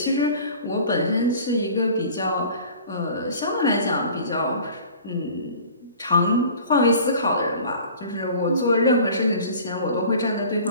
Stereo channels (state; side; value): inverted; both; correlation -0.45